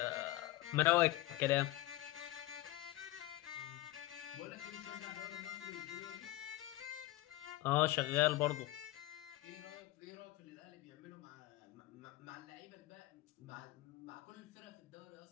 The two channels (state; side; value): quieter; right; 17.0 dB